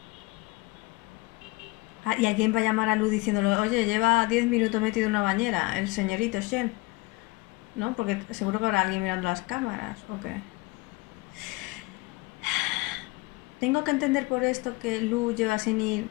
Ah, y alguien va a llamar a Lu diciéndole, oye, lleva 10 minutos metido en una bañera, el señorito Shen. ¿No? Porque seguro que habrá alguien mirando las cámaras, ¿o qué? ¿Tengo que entender por esto que Lu lleva sin ir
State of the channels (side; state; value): right; quieter; 23.5 dB